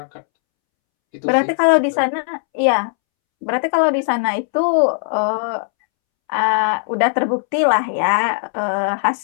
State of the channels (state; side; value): silent; right; 67 dB below the other